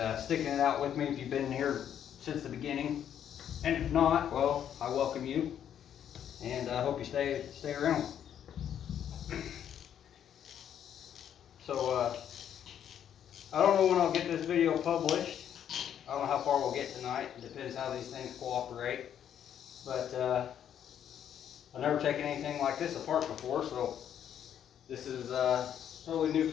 sticking it out with me if you've been here since the beginning. And if not, well, I welcome you, and I hope you stay around. So I don't know when I'll get this video published. I don't know how far we'll get tonight. It depends how these things cooperate. But I've never taken anything like this apart before, so this is totally new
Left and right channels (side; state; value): right; quieter; 9.5 dB